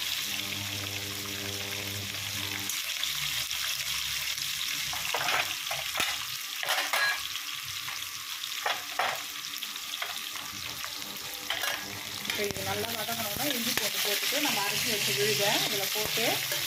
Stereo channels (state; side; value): identical; both; correlation 1.00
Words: இது நல்லா வதங்கணும்னா இஞ்சி போட்டுட்டு நம்ம அரைச்சி வச்சு விழுதை இதில் போட்டு